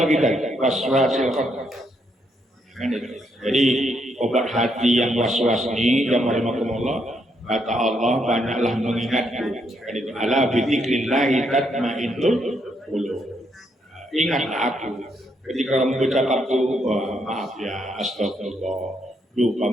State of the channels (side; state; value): both; normal; correlation 0.76